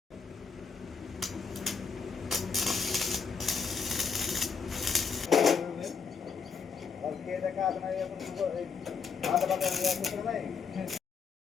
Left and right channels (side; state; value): right; quieter; 5.8 dB